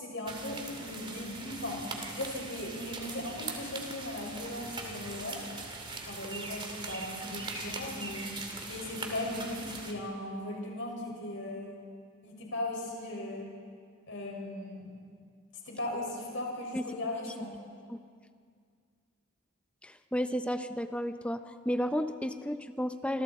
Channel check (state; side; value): normal; both; correlation 0.33